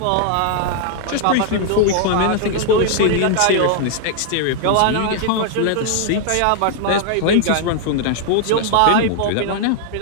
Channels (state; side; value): different; both; correlation 0.00